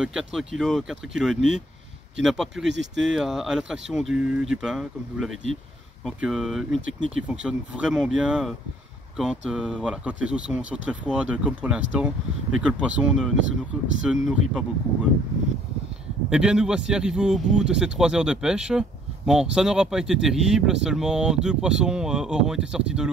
4 kg, 4 kg et demi, qui n'a pas pu résister à l'attraction du pain, comme je vous l'avais dit. Donc une technique qui fonctionne vraiment bien quand les eaux sont très froides, comme pour l'instant, et que le poisson ne se nourrit pas beaucoup. Eh bien, nous voici arrivés au bout de ces 3 heures de pêche. Bon, ça n'aura pas été terrible, seulement 2 poissons auront été sortis de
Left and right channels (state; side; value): normal; both; correlation 0.60